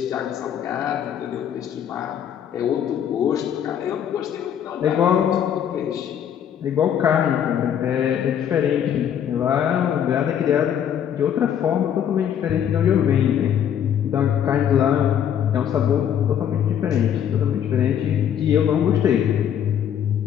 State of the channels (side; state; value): right; quieter; 9.3 dB